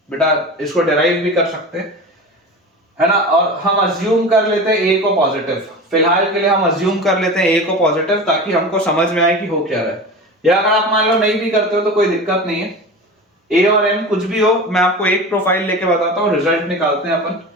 बेटा इसको डिराइव भी कर सकते हैं, है ना। और हम अज्यूम कर लेते हैं a को पॉजिटिव, फिलहाल के लिए हम अज्यूम कर लेते हैं a को पॉजिटिव ताकि हमको समझ में आए कि हो क्या रहा है। या अगर आप मान लो नहीं भी करते हो तो कोई दिक्कत नहीं है, a और m कुछ भी हो, मैं आपको एक प्रोफाइल लेके बताता हूँ, रिजल्ट निकालते हैं अपन।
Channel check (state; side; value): normal; both; correlation 0.31